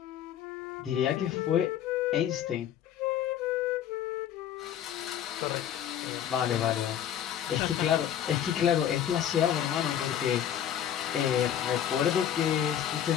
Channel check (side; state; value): right; quieter; 10.1 dB